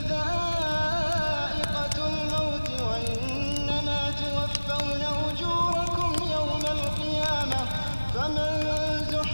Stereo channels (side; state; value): both; inverted; correlation -1.00